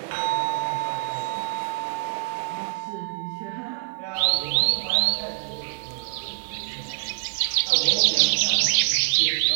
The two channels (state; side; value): silent; left; 62 dB below the other